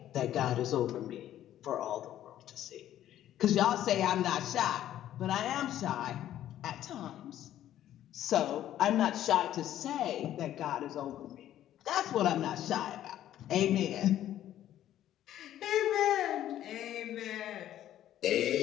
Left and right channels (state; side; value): quieter; right; 12.2 dB